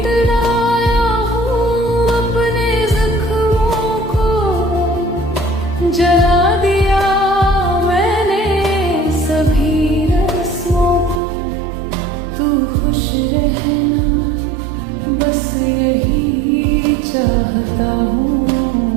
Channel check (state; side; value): drops out; left; at 11.2 s